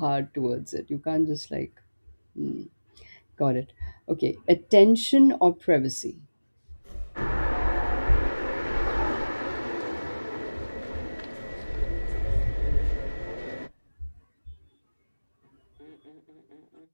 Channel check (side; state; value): both; inverted; correlation -1.00